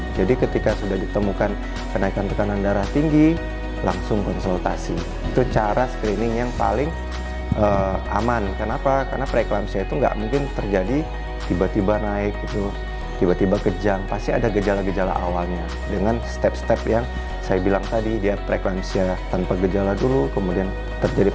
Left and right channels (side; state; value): both; identical; correlation 1.00